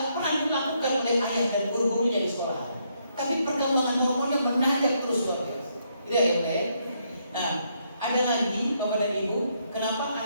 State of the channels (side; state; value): both; inverted; correlation -0.75